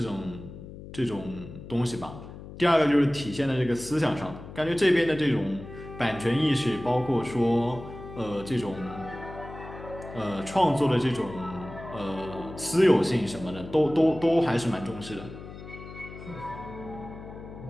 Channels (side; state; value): left; noise; hum, 14 dB below the sound